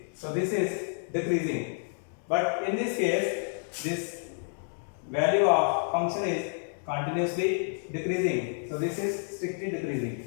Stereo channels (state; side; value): silent; right; 58 dB below the other